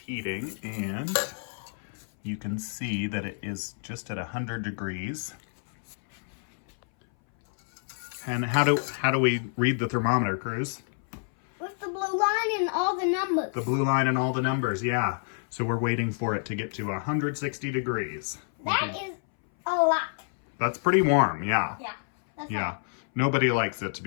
and you can see that it is just at 100 degrees. And how do we read the thermometer, Cruz? With the blue line and all the numbers. The blue line and all the numbers, yeah. So we're waiting for it to get to 160 degrees. That is a lot. That's pretty warm, yeah. Yeah. That's Yeah. right. Nobody likes it to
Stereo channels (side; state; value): right; silent; 59 dB below the other